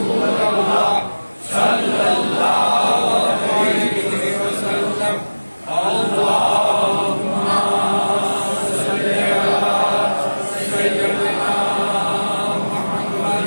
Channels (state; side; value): inverted; both; correlation -1.00